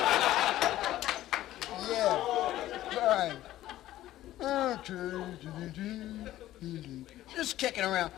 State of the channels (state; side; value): quieter; right; 14.3 dB